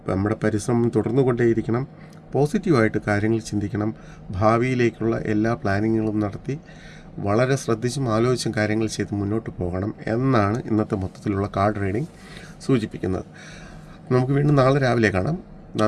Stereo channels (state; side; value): identical; both; correlation 1.00